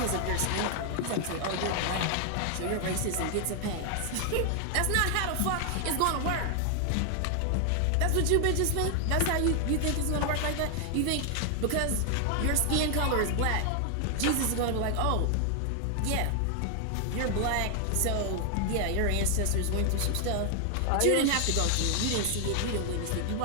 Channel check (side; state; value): both; different; correlation 0.00